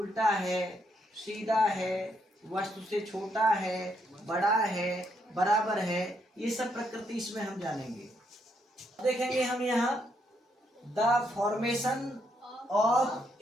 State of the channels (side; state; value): both; normal; correlation 0.75